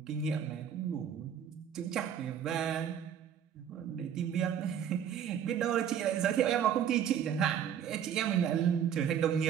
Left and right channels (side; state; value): left; quieter; 8.9 dB